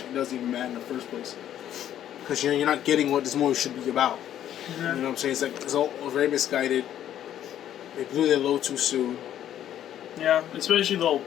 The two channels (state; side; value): quieter; right; 11.0 dB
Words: doesn't even matter in the first place because you're not getting what this movie should be about. You know what I'm saying? It's all very misguided. They blew their load too soon. Yeah, especially the whole